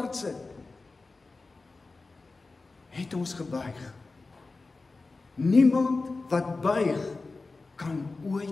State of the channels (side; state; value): right; quieter; 3.7 dB